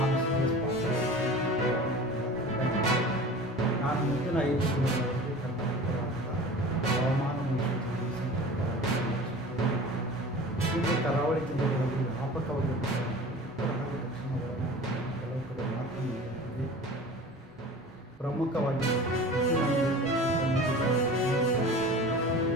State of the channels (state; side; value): normal; both; correlation 0.39